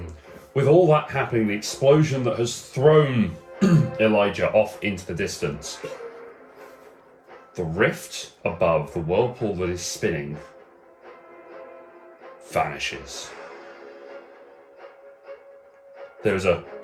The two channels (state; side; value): identical; both; correlation 1.00